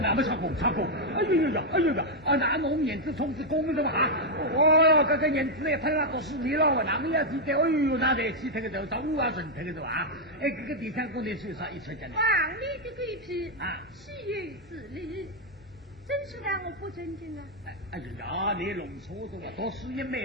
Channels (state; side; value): normal; both; correlation 0.00